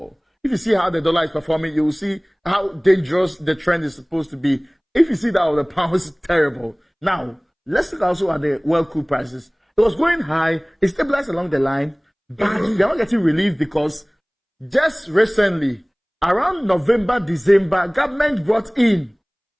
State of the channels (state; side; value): identical; both; correlation 1.00